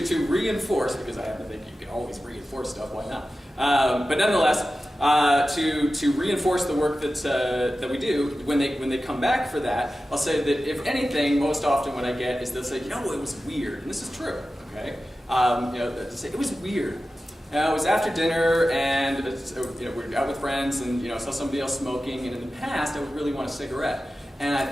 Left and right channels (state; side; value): normal; both; correlation 0.94